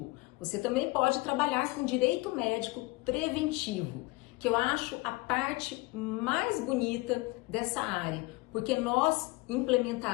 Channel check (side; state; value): right; quieter; 23.6 dB